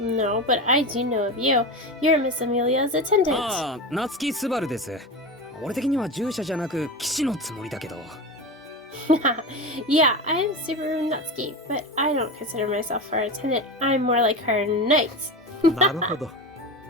but I do know of you. You're Miss Amelia's attendant. ああ、夏木スバルです。俺的には従者じゃなく騎士のつもりだけど。Yeah, I'm Subaru Natsuki, but I don't consider myself her attendant. I'm more like her knight. なるほど。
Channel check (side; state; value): both; normal; correlation 0.24